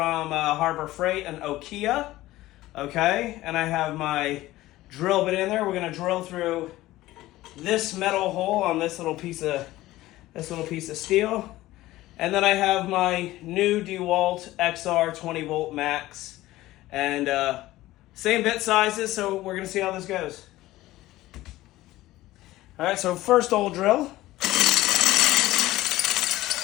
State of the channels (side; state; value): right; quieter; 16.7 dB